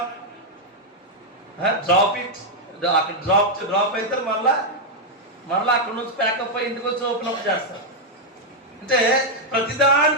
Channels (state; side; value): normal; both; correlation -0.01